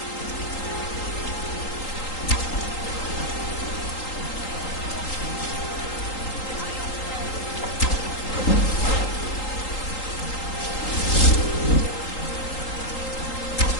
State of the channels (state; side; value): late; right; 3.8 ms